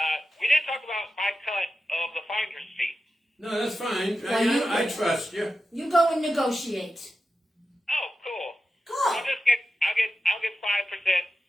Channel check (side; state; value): both; normal; correlation 0.91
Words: We didn't talk about my cut of the finder's fee. No, that's fine. Well, I trust you. You go and negotiate. Oh, cool. Cool. I'll get 5%